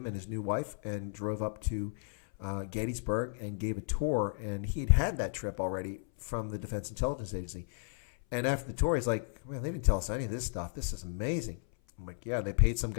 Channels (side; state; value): right; silent; 55 dB below the other